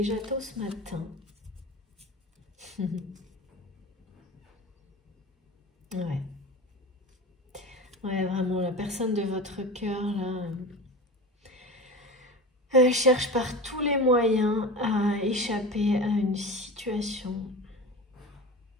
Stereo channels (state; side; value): normal; both; correlation 0.30